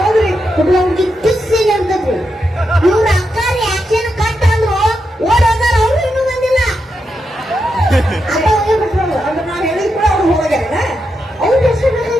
ಹುಡುಗ ಹುಡುಗಿ ಕಿಸ್ ಸೀನ್ ಇರ್ತದ್ರಿ. ಇವ್ರ ಅಕ್ಕಾರಿ ಆಕ್ಷನ್ ಕಟ್ ಅಂದ್ರು ಓಡೋದಾರ. ಅವ್ರು ಇನ್ನೂ ಬಂದಿಲ್ಲ. ಅದ ಹೋಗಿ ಬಿಟ್ರು. ಅಂದ್ರೆ ನಾವ್ ಹೇಳಿದ್ ಕೂಡ ಅವ್ರು ಹೋಗ್ಯಾರ. ಅವ್ರ ಹೆಸರು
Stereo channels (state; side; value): normal; both; correlation 0.85